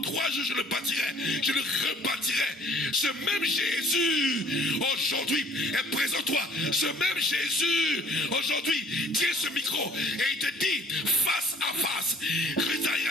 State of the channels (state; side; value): normal; both; correlation 0.55